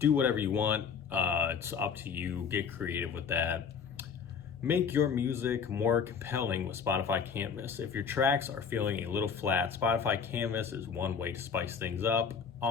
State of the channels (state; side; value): quieter; right; 6.5 dB